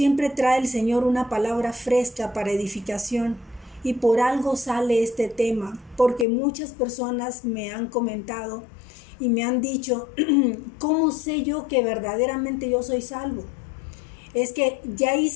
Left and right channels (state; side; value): drops out; right; at 6.2 s